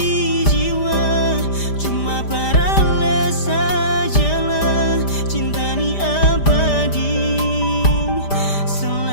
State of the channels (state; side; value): late; right; 5.0 ms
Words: jiwa. Cuma paralel sajalah, cinta ni abadi